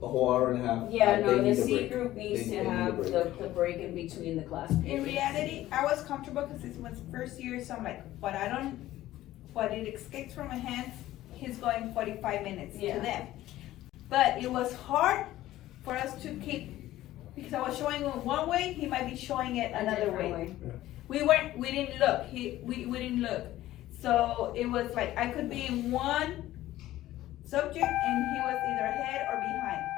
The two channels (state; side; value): quieter; right; 15.0 dB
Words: a whole hour and a half. Yeah, they no, the need a C break. group needs They to need a have break. the break in between the class in periods. reality, I was comfortable because this was first year, so I'm like, what it escapes from my hands, he's going 45 minutes to Yeah. them. But it was hard for us to keep, because I was showing him one way, he might be showing it A another different way. We didn't look, we didn't look. So it was like, I could be in one subject and he was either ahead or behind.